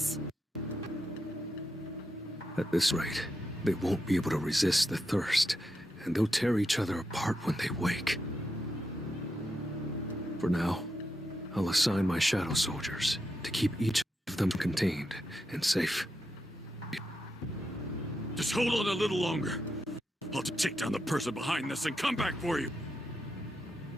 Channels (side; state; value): both; normal; correlation 0.85